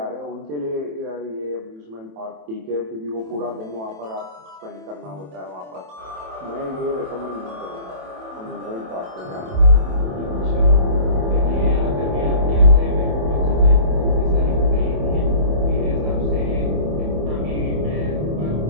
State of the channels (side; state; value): left; late; 27 ms